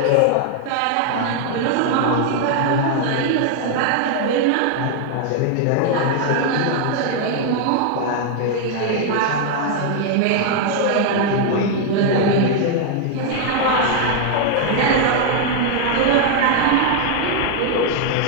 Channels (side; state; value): both; different; correlation 0.00